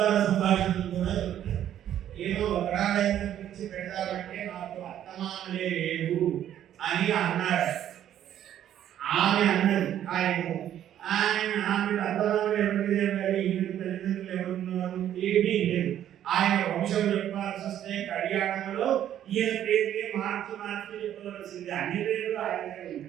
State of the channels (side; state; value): left; quieter; 11.0 dB